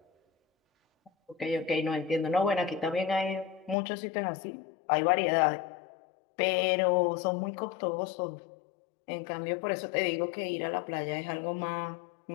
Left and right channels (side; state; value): right; drops out; at 3.8 s